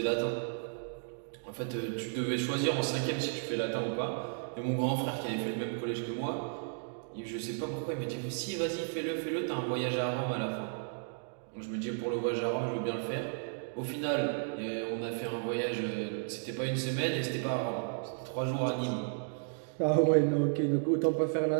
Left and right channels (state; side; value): silent; left; digital silence